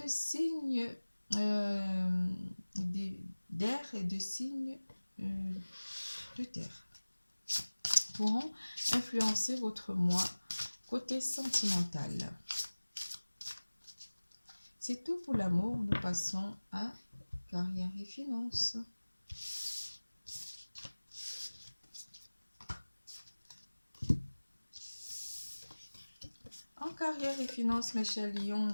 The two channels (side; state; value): both; inverted; correlation -1.00